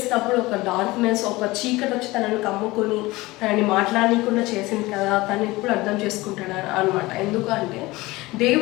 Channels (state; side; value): quieter; right; 20.5 dB